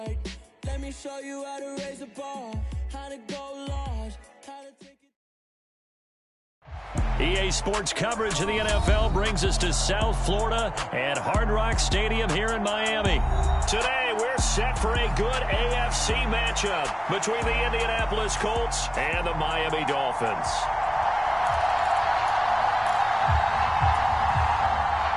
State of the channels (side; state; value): both; identical; correlation 1.00